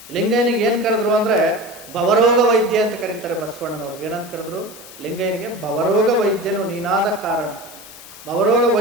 ಲಿಂಗಯ್ಯನಿಗೆ ಏನು ಕರೆದ್ರು ಅಂದರೆ ಭವರೋಗ ವೈದ್ಯ ಅಂತ ಕರೀತಾರೆ ಬಸವಣ್ಣನವರು. ಏನಂತ ಕರೆದ್ರು? ಲಿಂಗಯ್ಯನಿಗೆ ಭವರೋಗ ವೈದ್ಯನು ನೀನಾದ ಕಾರಣ. ಭವರೋಗ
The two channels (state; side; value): noise; left; hiss, 19 dB below the sound